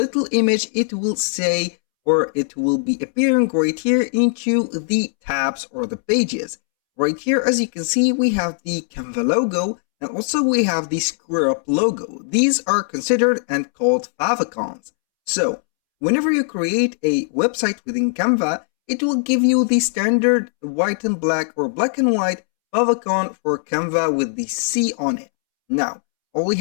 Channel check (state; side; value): silent; right; 66 dB below the other